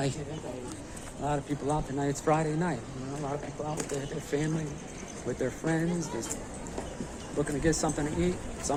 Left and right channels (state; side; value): identical; both; correlation 1.00